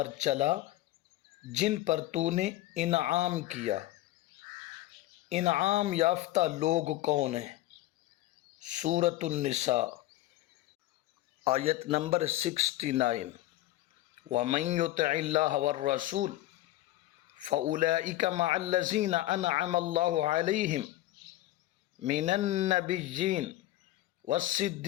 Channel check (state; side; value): quieter; right; 16.0 dB